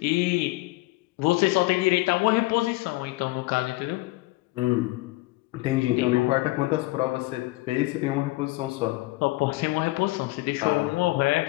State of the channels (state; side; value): quieter; right; 20.5 dB